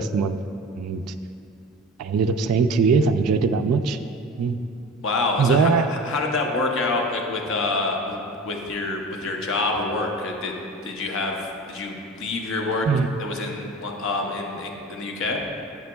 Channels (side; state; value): both; normal; correlation 0.35